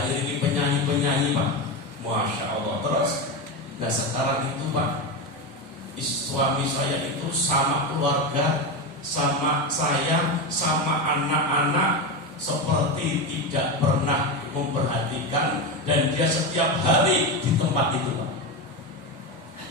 ini penyanyi Pak. Masya Allah. Terus nah sekarang itu Pak, suami saya itu sama keluarga, sama saya, sama anak-anak seperti tidak pernah memperhatikan, dan dia setiap hari di tempat itu Pak.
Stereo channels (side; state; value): both; normal; correlation 0.16